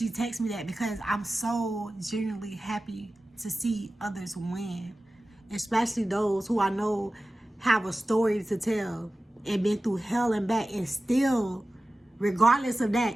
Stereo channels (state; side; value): normal; both; correlation 0.95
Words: texted me that, because I'm so genuinely happy to see others win, especially those who I know have a story to tell and been through hell and back, and still, regardless of